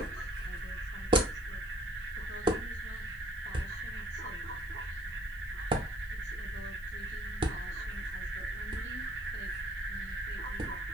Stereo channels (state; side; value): noise; right; hiss, 25 dB below the sound